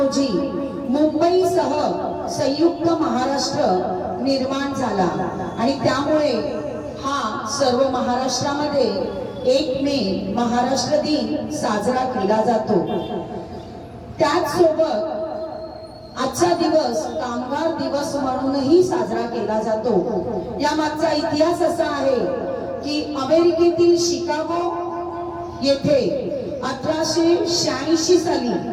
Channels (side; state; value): both; identical; correlation 1.00